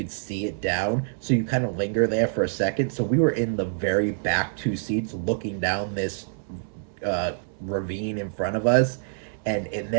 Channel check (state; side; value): silent; left; 61 dB below the other